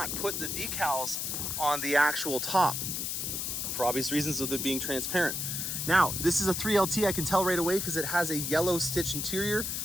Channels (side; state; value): left; noise; hiss, 2 dB below the sound